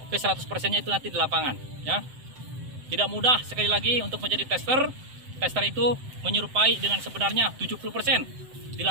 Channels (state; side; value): late; left; 7.8 ms